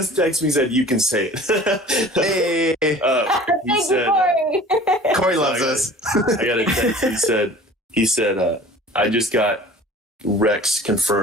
texted me and said, "You can say it." Hey, he said, Corey loves us. I got a text. He said, "I just got Rex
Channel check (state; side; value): normal; both; correlation 0.44